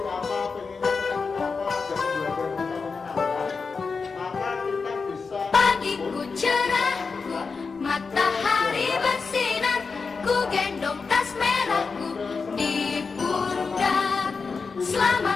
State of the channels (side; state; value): right; quieter; 4.8 dB